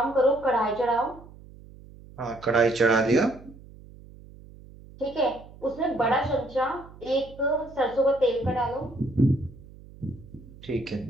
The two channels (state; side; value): noise; right; hum, 20 dB below the sound